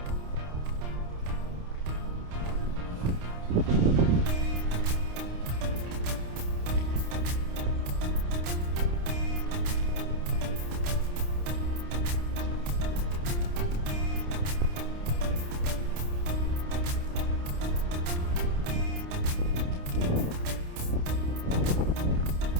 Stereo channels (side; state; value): left; late; 29 ms